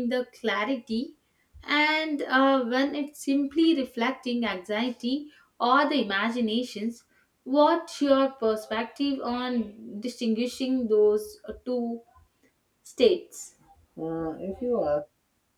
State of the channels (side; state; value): both; identical; correlation 1.00